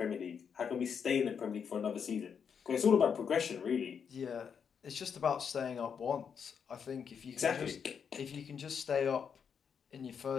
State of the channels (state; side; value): quieter; right; 7.0 dB